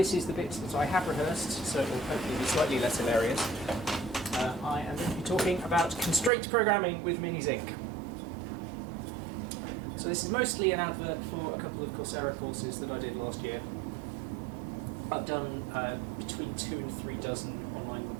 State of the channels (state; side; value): drops out; left; at 6.3 s